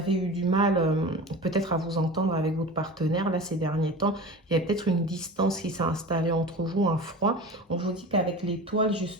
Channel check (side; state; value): both; normal; correlation 0.33